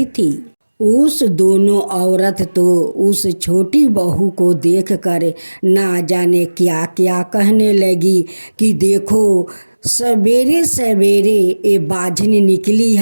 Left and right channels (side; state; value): both; inverted; correlation -1.00